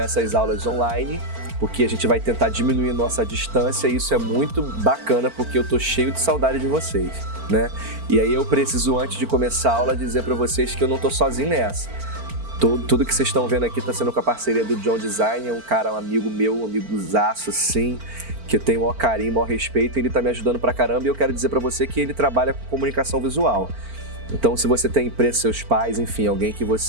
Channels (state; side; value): late; left; 4.4 ms